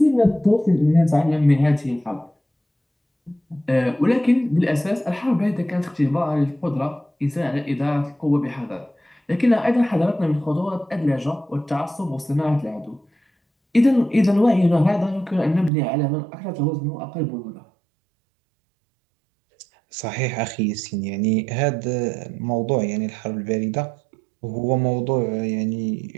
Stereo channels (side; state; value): left; drops out; at 15.7 s